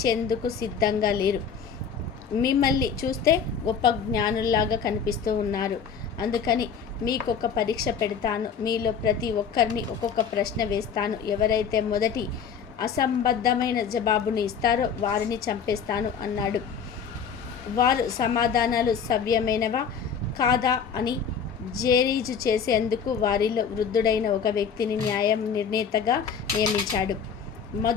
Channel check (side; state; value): right; quieter; 6.8 dB